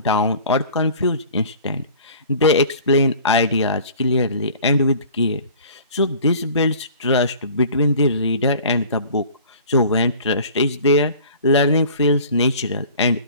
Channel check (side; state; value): both; inverted; correlation -0.46